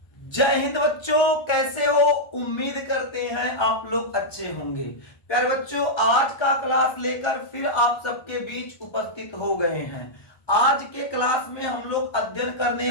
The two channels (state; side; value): late; right; 1.4 ms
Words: जय हिंद बच्चों, कैसे हो? उम्मीद करते हैं आप लोग अच्छे होंगे। प्यारे बच्चों, आज का क्लास लेकर फिर आप सबके बीच उपस्थित हो गए हैं। आज के क्लास में हम लोग अध्ययन करने